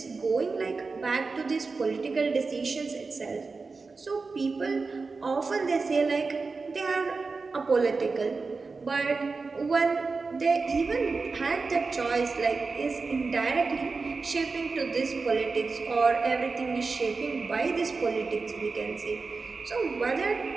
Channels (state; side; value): quieter; left; 4.2 dB